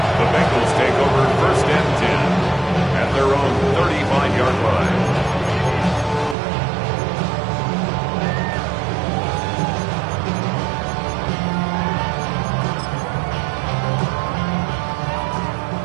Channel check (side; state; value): left; drops out; at 6.4 s